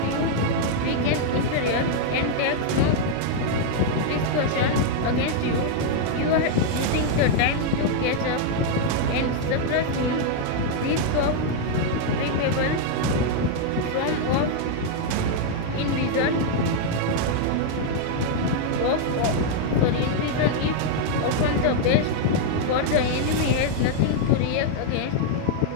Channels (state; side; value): different; both; correlation 0.00